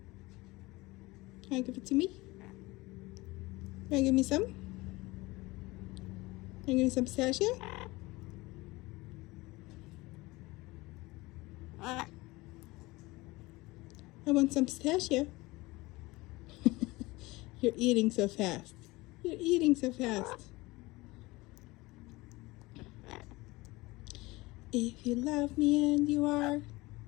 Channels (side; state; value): right; quieter; 21.5 dB